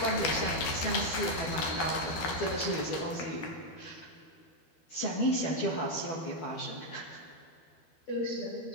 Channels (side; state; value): right; late; 13 ms